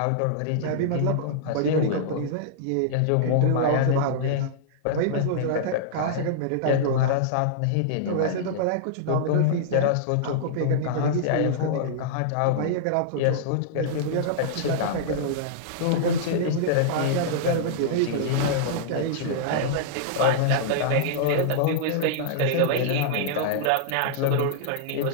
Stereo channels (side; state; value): both; different; correlation -0.02